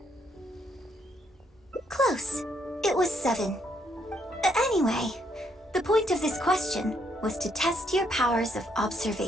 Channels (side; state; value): both; normal; correlation 0.73